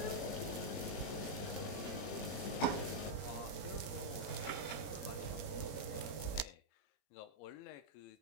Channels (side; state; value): right; late; 21 ms